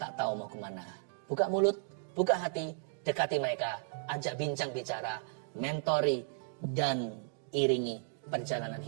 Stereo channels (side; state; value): left; silent; digital silence